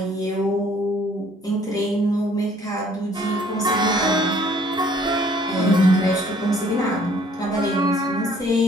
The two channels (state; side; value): normal; both; correlation 0.59